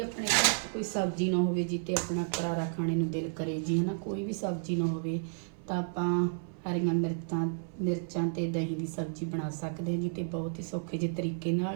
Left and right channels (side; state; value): left; silent; 57 dB below the other